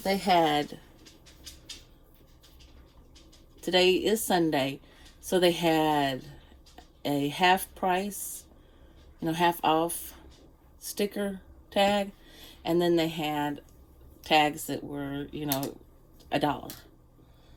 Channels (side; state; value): both; identical; correlation 1.00